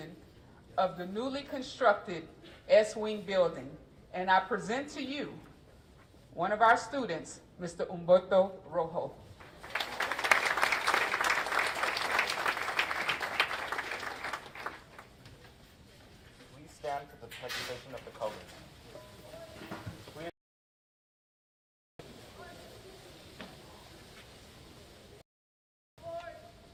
of the newly constructed S-Wing building, and I present to you one of our students, Mr. Humberto Rojo. Please stand for the presentation of the colors.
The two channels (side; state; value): both; identical; correlation 1.00